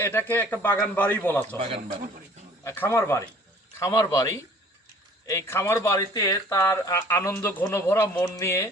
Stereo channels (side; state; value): both; normal; correlation 0.52